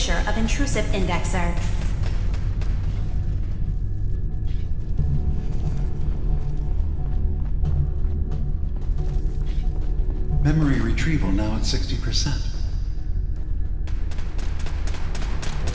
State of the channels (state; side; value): identical; both; correlation 1.00